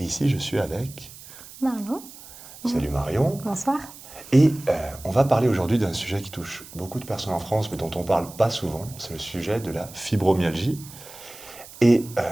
ici, je suis avec... Marion. Salut Marion. Bonsoir. Et on va parler aujourd'hui d'un sujet qui touche beaucoup de personnes en France, mais dont on ne parle pas souvent. C'est le sujet de la fibromyalgie. Et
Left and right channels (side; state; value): right; noise; hiss, 17 dB below the sound